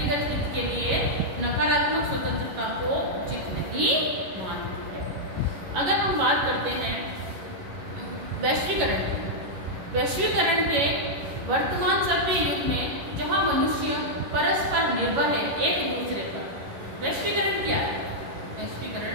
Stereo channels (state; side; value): late; left; 11 ms